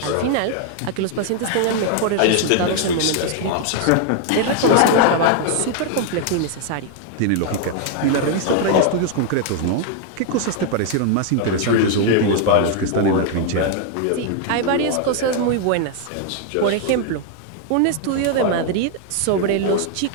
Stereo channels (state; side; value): different; both; correlation 0.00